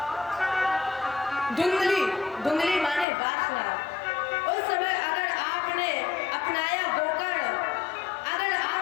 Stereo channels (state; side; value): drops out; right; at 3.1 s